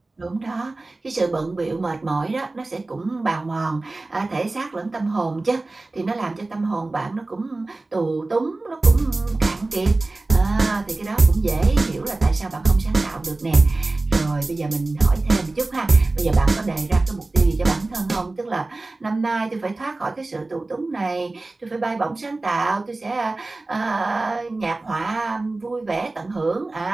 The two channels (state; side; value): quieter; left; 3.1 dB